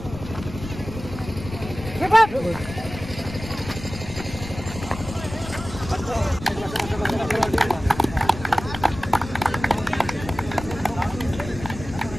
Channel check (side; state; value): left; noise; rumble, 11 dB below the sound